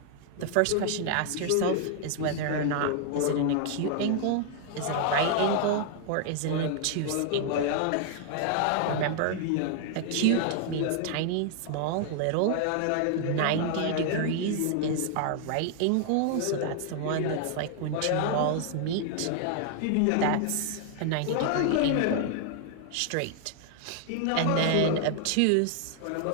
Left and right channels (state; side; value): different; both; correlation 0.00